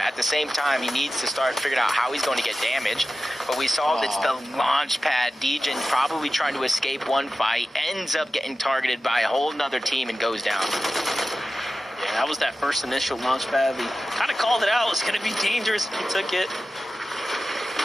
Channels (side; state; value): both; normal; correlation 0.94